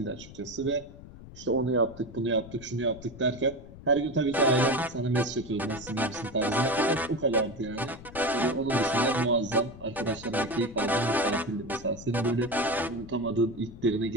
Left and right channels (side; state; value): left; noise; rumble, 17 dB below the sound